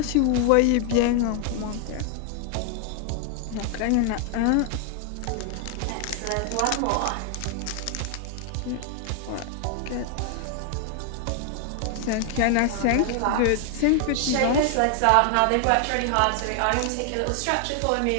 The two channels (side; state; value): both; different; correlation 0.00